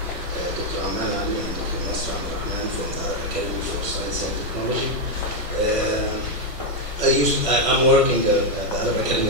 Dr. Ahmed and Dr. Nasr from the Arab Academy for Science and Technology. I'm working at the Arab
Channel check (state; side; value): late; right; 1.5 ms